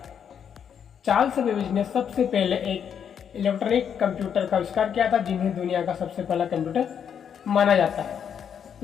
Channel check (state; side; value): quieter; right; 8.0 dB